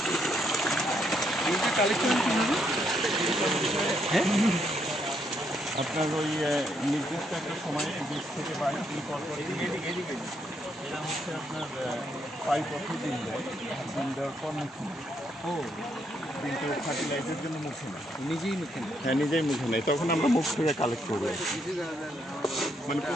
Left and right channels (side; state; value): both; normal; correlation 0.75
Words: আপনার ওই নির্দিষ্ট একটা সময়ে 20 থেকে 22 দিন পর পর এরা হচ্ছে আপনার 5 বছর ডিম দেয়। ডিম দেওয়ার পর মুখে নেয়। কিন্তু ফার্টিলাইজের জন্য মুখে নেয়, নিজেই মুখে নেয়। হ্যাঁ নিজেই মুখে নেয়। তখন আমরা মুখ থেকে কালেক্ট করবো, মানে